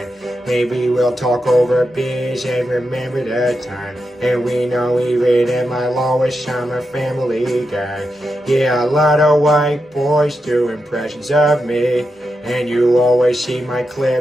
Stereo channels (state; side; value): normal; both; correlation 0.87